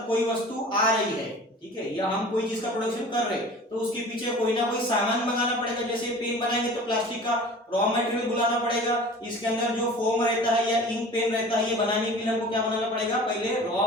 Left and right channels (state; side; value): normal; both; correlation 0.41